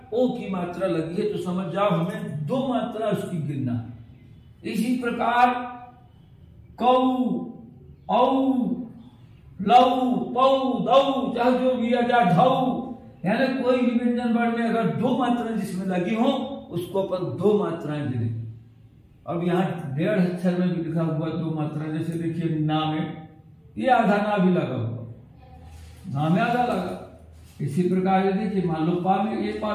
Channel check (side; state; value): both; identical; correlation 1.00